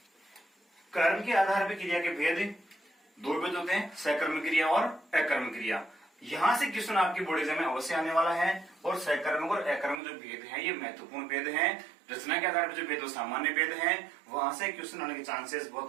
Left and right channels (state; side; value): drops out; left; at 10.0 s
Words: कर्म के आधार पर क्रिया के भेद 2 भेद होते हैं, सकर्मक क्रिया और अकर्मक क्रिया। यहां से क्वेश्चन आपके बोर्ड एग्जाम में अवश्य आने वाला है, और सकर्मक और अकर्मक जो भेद हैं ये महत्वपूर्ण भेद हैं। रचना के आधार पर जो भेद वो सामान्य भेद हैं, वहां से क्वेश्चन आने के चांसेस